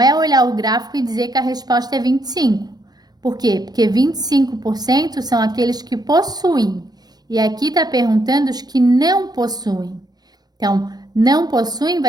olhar o gráfico e dizer que a resposta é 25. Por quê? Porque 25% são aqueles que possuem. E aqui está perguntando os que não possuem. Então, não possuem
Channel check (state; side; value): late; left; 0.19 ms